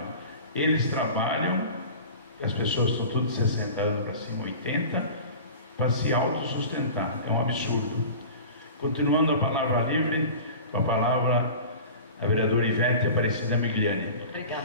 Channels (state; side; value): inverted; both; correlation -0.38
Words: Eles trabalham, as pessoas estão tudo de 60 anos para cima, 80, para se autossustentar. É um absurdo. Continuando a palavra livre, com a palavra a vereadora Ivete Aparecida Migliani.